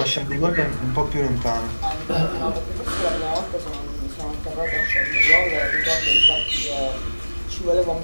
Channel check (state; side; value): inverted; both; correlation -1.00